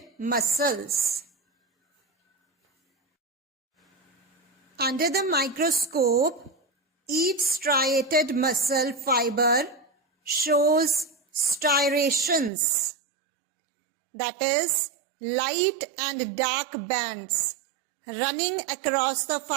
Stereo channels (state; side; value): drops out; left; at 12.5 s